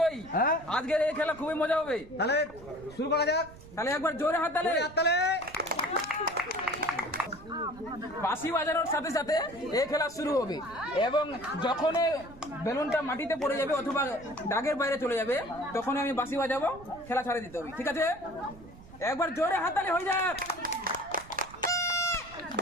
হ্যাঁ আজকের এই খেলা খুবই মজা হবে। তাহলে শুরু করা যাক। তাহলে একবার জোরে হাততালি। বাঁশি বাজানোর সাথে সাথে এই খেলা শুরু হবে, এবং যখন বেলুনটা মাটিতে পড়ে যাবে অথবা দাগের বাইরে চলে যাবে তখন আমি বাঁশি বাজাবো, খেলা ছাড়ে দিতে হবে। ঠিক আছে? একবার জোরে হাততালি হয়ে যাক।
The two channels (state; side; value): noise; right; rumble, 19 dB below the sound